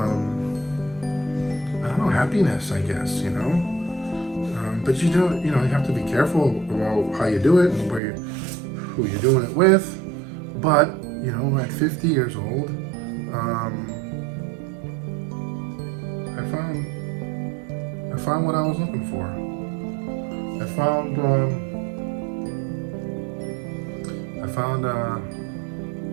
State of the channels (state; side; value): drops out; left; at 8.0 s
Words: don't know, happiness, I guess, But you have to be careful about how you do it and who you're doing it with. But at 50 years old, I found what I was looking for. I found